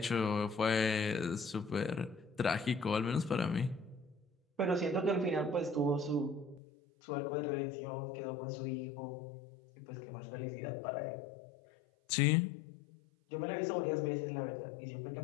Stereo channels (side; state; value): right; drops out; at 6.6 s